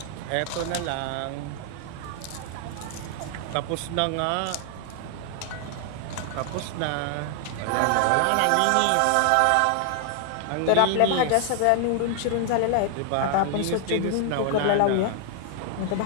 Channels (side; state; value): both; different; correlation 0.00